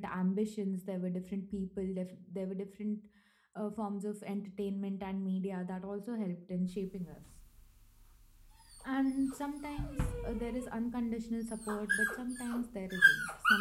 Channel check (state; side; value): identical; both; correlation 1.00